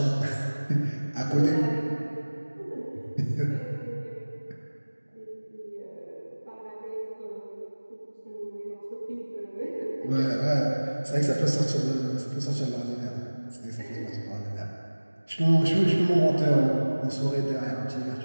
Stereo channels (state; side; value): inverted; both; correlation -1.00